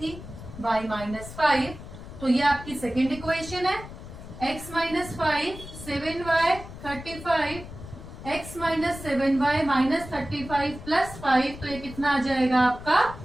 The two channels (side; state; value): left; noise; rumble, 13 dB below the sound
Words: y minus 5। तो ये आपकी सेकेंड इक्वेशन है। x minus 5, 7y 35, x minus 7y minus 35 plus 5, तो ये कितना आ जाएगा आपका?